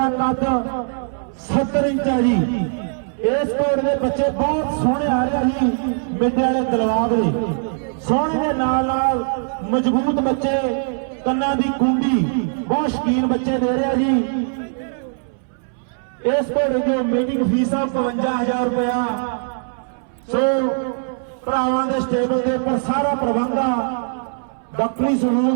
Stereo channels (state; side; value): silent; left; 65 dB below the other